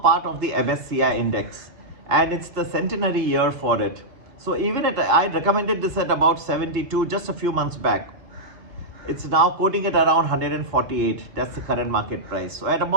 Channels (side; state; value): left; late; 3.7 ms